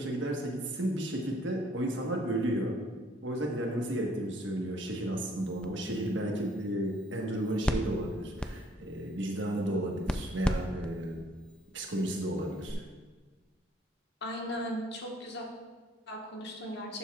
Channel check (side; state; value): both; normal; correlation 0.62